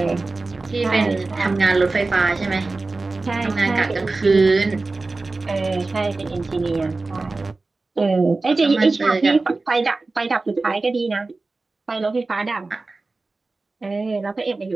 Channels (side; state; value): left; quieter; 3.5 dB